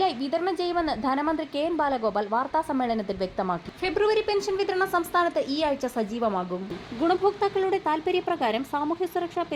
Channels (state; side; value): identical; both; correlation 1.00